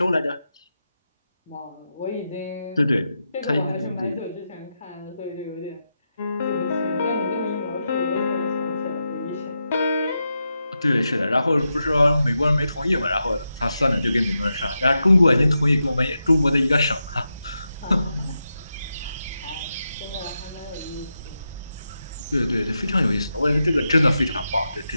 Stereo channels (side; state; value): both; inverted; correlation -0.87